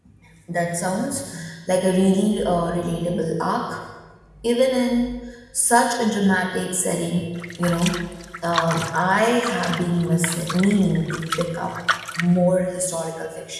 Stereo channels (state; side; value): identical; both; correlation 1.00